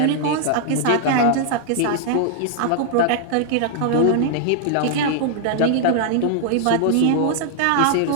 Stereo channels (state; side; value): different; both; correlation -0.01